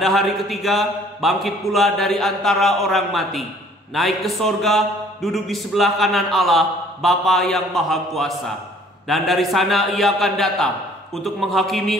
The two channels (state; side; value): normal; both; correlation 0.56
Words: hari ketiga, bangkit pula dari antara orang mati, naik ke sorga, duduk di sebelah kanan Allah, Bapa yang Maha Kuasa. Dan dari sana ia akan datang untuk